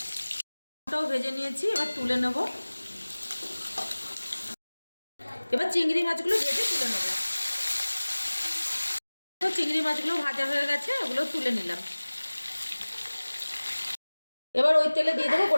ওটাও ভেজে নিয়েছি, এবার তুলে নেব। এবার চিংড়ি মাছগুলো ভেজে তুলে নেব। চিংড়ি মাছগুলো ভাজা হয়ে গেছে, ওগুলো তুলে নিলাম। এবার ওই তেলে দিয়ে দেবো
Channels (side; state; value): both; inverted; correlation -1.00